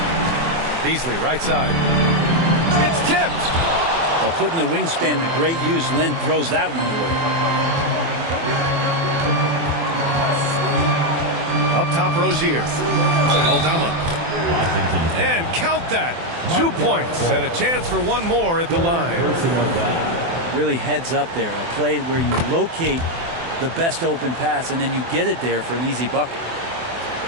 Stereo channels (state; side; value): late; left; 24 ms